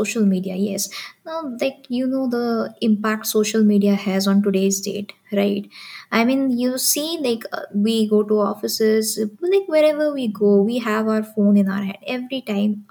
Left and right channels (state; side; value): identical; both; correlation 1.00